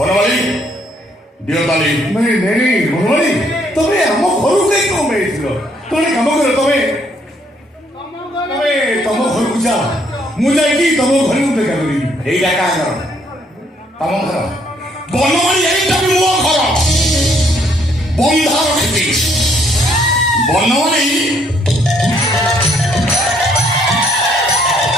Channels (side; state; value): both; normal; correlation 0.68